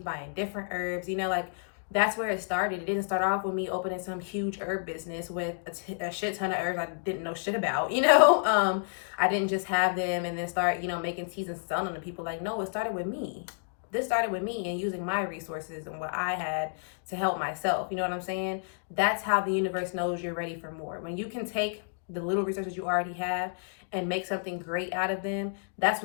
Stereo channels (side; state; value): right; silent; digital silence